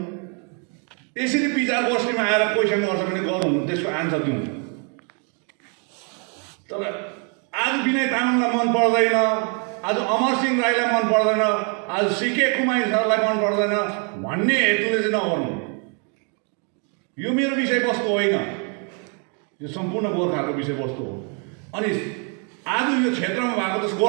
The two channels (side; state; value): left; quieter; 37.6 dB